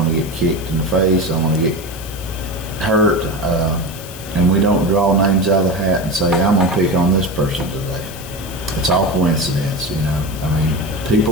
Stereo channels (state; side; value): noise; left; hiss, 15 dB below the sound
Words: to get kicked in the face, I want to get hurt, and we don't draw names out of the hat and say, I'm going to pick on this person today. It's all coincidence, you know. I mean, people